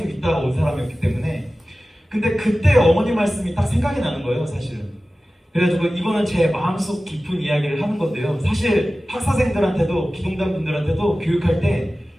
있다가 온 사람이었기 때문에. 근데 그때 어머니 말씀이 딱 생각이 나는 거예요 사실은. 그래가지고 이거는 제 마음속 깊은 이야기를 하는 건데요. 사실 학사생들한테도 기동단 분들한테도 교육할 때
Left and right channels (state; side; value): normal; both; correlation 0.96